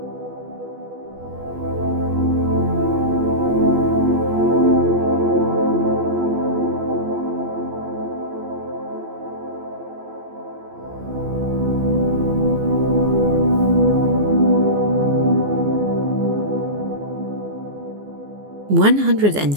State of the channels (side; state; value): left; late; 14 ms